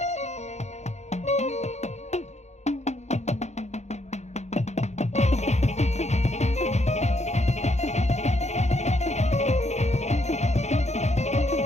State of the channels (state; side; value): late; right; 0.33 ms